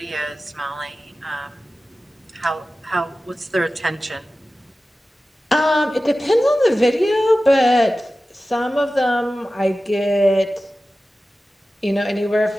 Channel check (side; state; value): both; normal; correlation 0.95